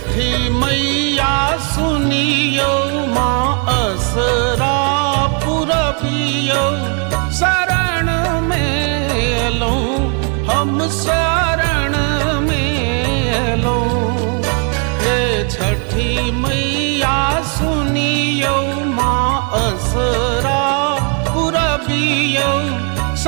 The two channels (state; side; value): quieter; left; 38.7 dB